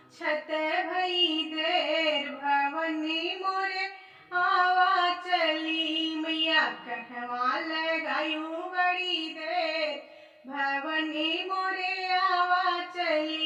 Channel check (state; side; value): identical; both; correlation 1.00